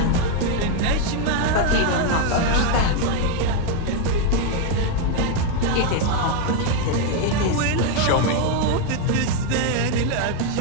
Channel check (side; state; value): both; different; correlation 0.01